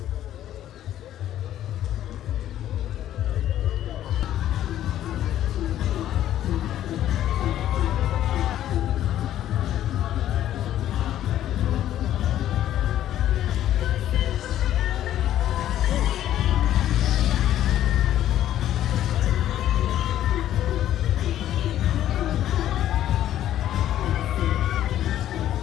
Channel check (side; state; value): right; quieter; 12.1 dB